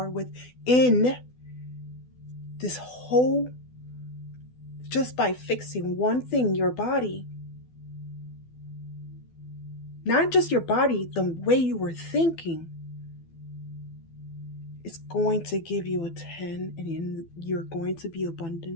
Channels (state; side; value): late; right; 12 ms